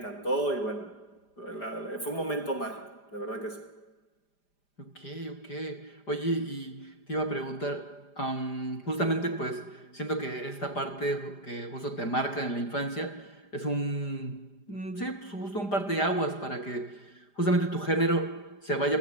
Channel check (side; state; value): right; late; 5.0 ms